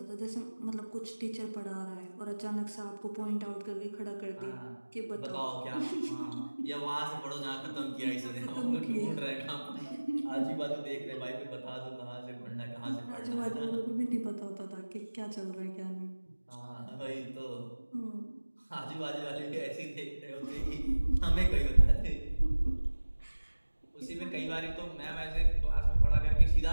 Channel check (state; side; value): inverted; both; correlation -1.00